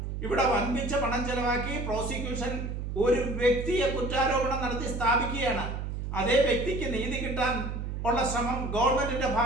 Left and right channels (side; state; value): right; noise; hum, 4 dB below the sound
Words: ഇവിടെ വൻപിച്ച പണം ചെലവാക്കി പ്രോസിക്യൂഷൻ ഒരു വ്യക്തിയെ കുറ്റാരോപണം നടത്തി സ്ഥാപിക്കുകയാണ്. അതേ വ്യക്തിക്ക് നീതി കിട്ടാൻ ഉള്ള ശ്രമം ഗവൺമെന്റിന്റെ